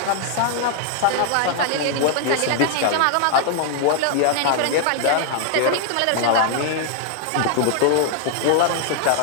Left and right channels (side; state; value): both; different; correlation 0.00